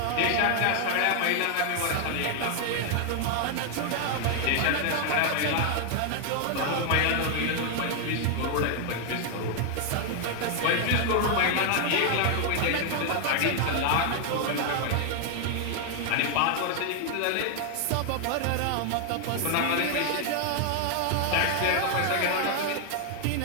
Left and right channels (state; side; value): different; both; correlation 0.00